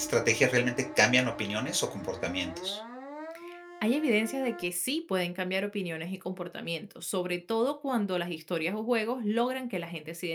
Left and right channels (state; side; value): identical; both; correlation 1.00